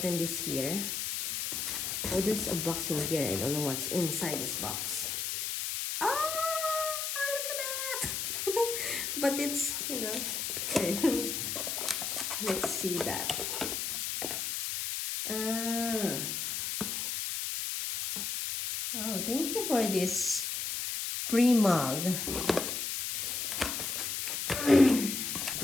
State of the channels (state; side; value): noise; left; hiss, 2 dB below the sound